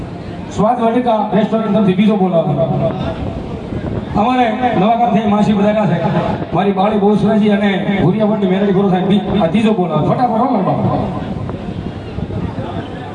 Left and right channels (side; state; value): both; identical; correlation 1.00